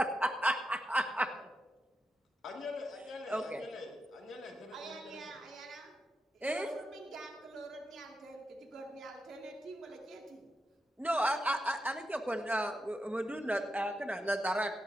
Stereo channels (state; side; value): normal; both; correlation 0.86